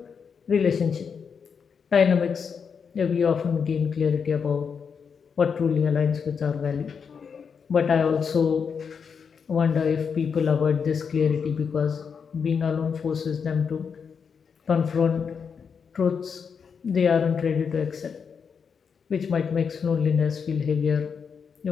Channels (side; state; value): right; quieter; 6.3 dB